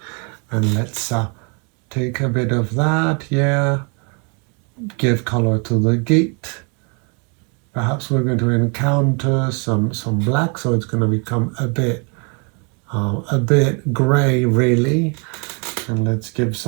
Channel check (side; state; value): left; quieter; 35.0 dB